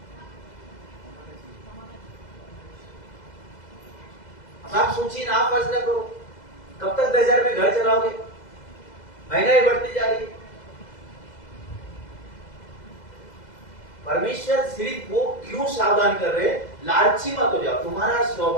आप सोचिए ना, आप फैसला करो, कब तक 10,000 में घर चलाओगे? महंगाई बढ़ती जा रही है। परमेश्वर सिर्फ वो क्यों सावधान कर रहे हैं? लालची मत हो जाओ, तुम्हारा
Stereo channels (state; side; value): late; right; 2.0 ms